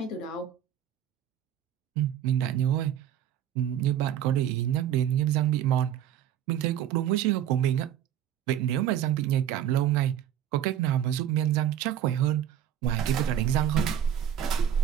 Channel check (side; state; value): left; quieter; 10.3 dB